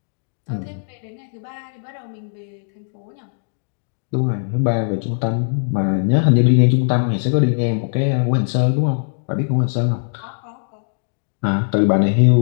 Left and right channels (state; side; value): silent; right; digital silence